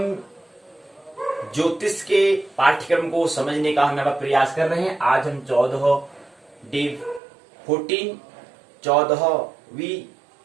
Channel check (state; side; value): drops out; left; at 7.2 s